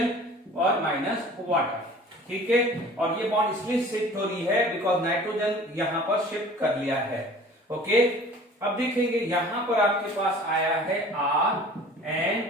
और माइनस वाटर, ठीक है, और ये बॉन्ड इसलिए शिफ्ट हो रही है बिकॉज नाइट्रोजन यहां पर शिफ्ट कर लिया है, ओके। अब देखेंगे यहां पर आपके पास आया है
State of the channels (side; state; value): both; normal; correlation 0.46